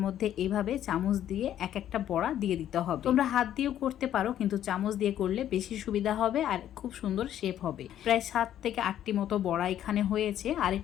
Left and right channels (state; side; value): quieter; right; 11.2 dB